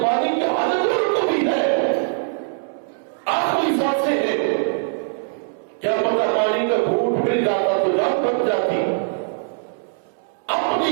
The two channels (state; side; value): silent; left; 65 dB below the other